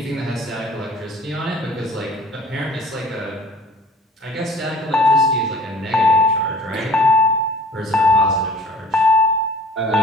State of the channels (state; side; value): normal; both; correlation 0.49